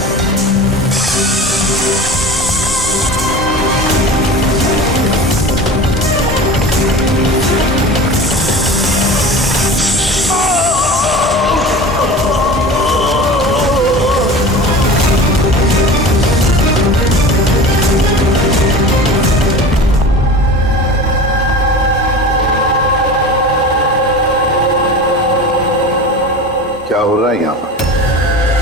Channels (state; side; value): normal; both; correlation 0.34